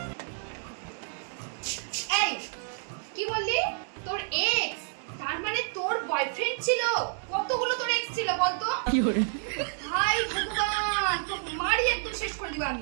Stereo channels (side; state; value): left; silent; 58 dB below the other